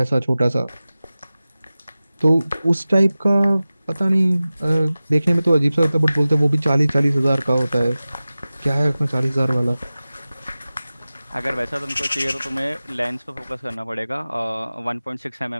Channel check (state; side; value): inverted; both; correlation -0.96